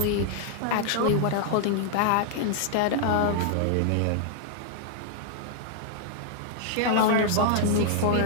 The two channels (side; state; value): both; different; correlation 0.00